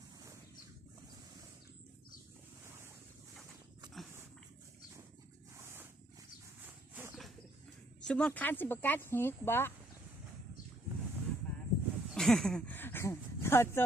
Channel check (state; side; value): normal; both; correlation 0.69